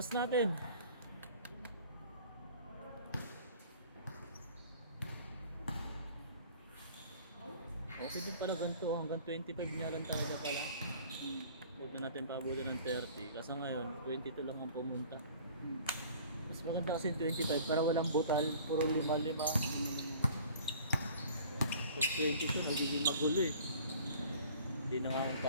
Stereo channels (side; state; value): both; inverted; correlation -0.49